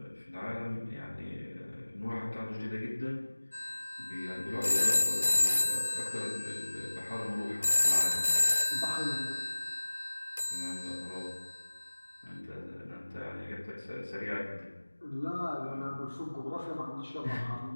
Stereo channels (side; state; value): both; inverted; correlation -1.00